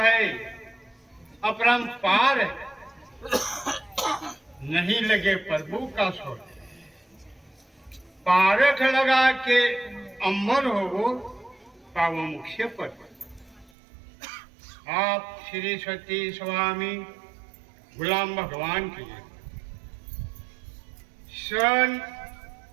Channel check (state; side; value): drops out; left; at 13.7 s